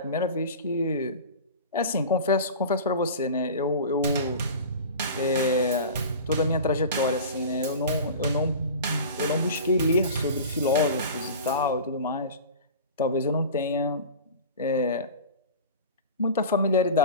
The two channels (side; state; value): both; inverted; correlation -0.34